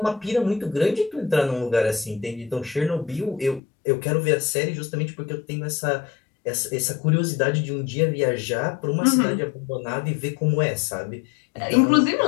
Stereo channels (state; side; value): drops out; right; at 3.6 s